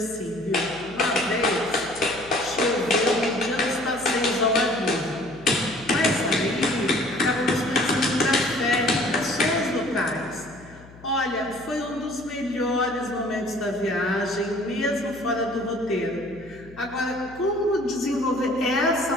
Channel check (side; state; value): left; noise; hum, 21 dB below the sound